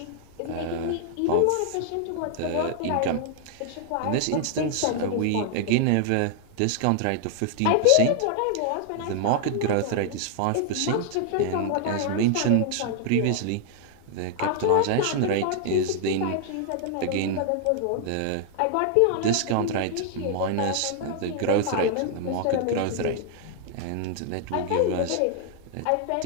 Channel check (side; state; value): both; different; correlation 0.00